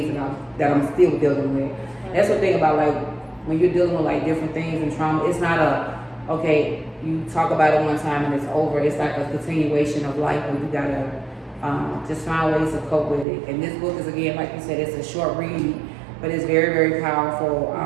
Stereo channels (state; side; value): drops out; left; at 13.2 s